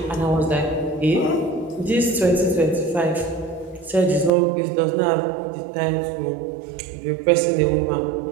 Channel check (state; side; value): drops out; left; at 4.3 s